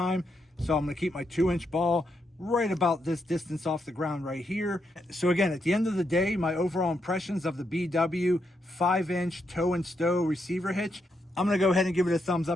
So I'm going to keep my 2-inch ball right about this distance off the ground right here. So again, at the end of the day, my overall impressions of the BW 5-inch tow and stow receiver hitch, I'm going to go ahead and give it a thumbs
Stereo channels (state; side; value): normal; both; correlation 0.80